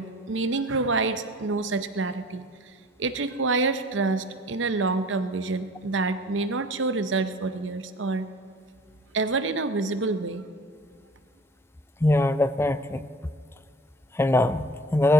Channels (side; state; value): both; normal; correlation 0.44